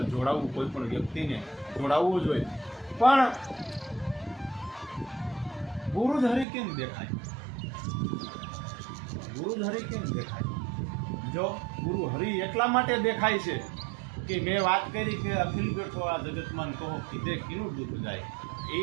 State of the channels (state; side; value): drops out; left; at 6.5 s